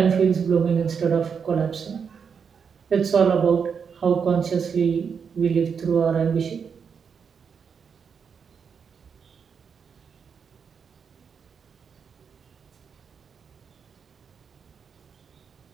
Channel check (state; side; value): quieter; left; 6.5 dB